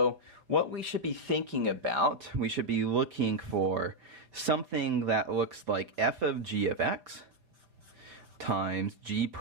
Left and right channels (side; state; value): left; late; 5.5 ms